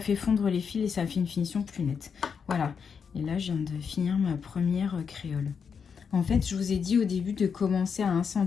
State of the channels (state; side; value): quieter; right; 6.4 dB